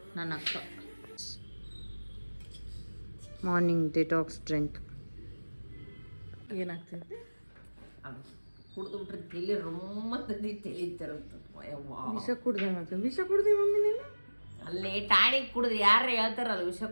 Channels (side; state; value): both; inverted; correlation -1.00